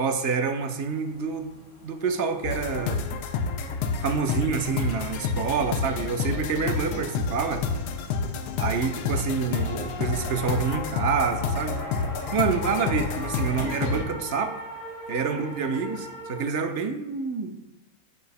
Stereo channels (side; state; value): right; late; 3.3 ms